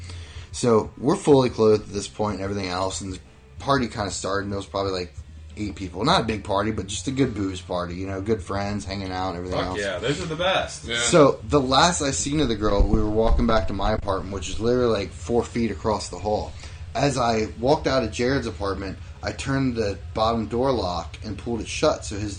So we're fully clothed at this point and everything else, and the party kind of started, and there was probably like 8 people. Not a big party, but just a good booze party, you know, good friends, hanging out and everything else. Yeah, those are the best. Yeah. So the last I seen of the girl, we were walking back to my apartment, which is literally like 4 feet across the hall. As I walked out of Jared's apartment, I turned the bottom door lock and pulled it shut so his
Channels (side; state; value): both; identical; correlation 1.00